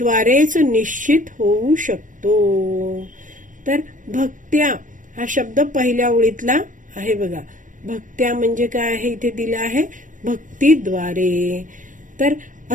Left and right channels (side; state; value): left; late; 0.38 ms